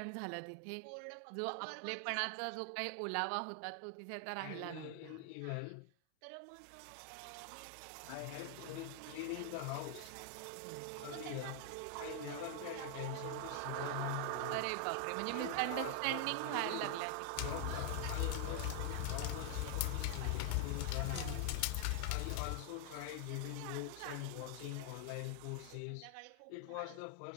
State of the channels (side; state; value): both; different; correlation 0.00